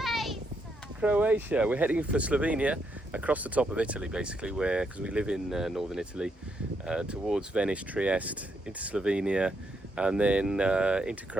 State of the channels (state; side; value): normal; both; correlation 0.77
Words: Croatia. We're heading for Slovenia, across the top of Italy basically, because we live in northern Italy, towards Venice, Trieste, into Slovenia, and then into